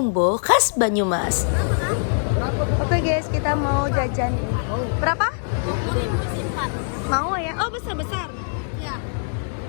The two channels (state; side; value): silent; right; digital silence